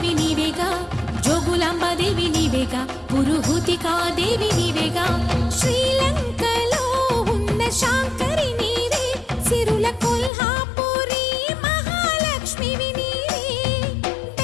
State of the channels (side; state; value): right; drops out; at 10.3 s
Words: నీవేగా జోగులాంబదేవి నీవేగా పురుహూతికా దేవి నీవేగా శ్రీలంకలో ఉన్న శాంకరి నీవే సిరుల కొల్హాపురి మహాలక్ష్మివి నీవే